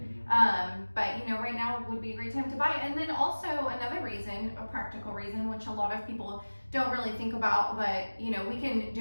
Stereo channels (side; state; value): both; inverted; correlation -1.00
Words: But you know, right now would be a great time to buy. And then also another reason, a practical reason, which a lot of people don't really think about, but you know, we can